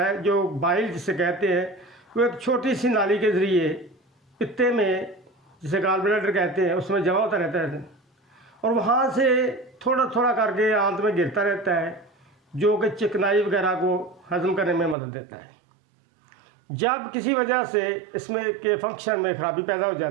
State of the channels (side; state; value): left; drops out; at 15.0 s